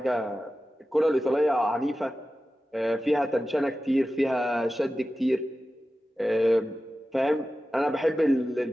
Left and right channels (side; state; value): both; normal; correlation 0.94